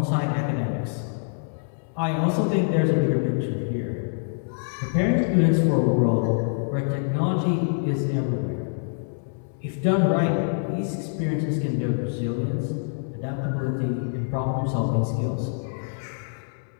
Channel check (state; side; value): silent; right; 61 dB below the other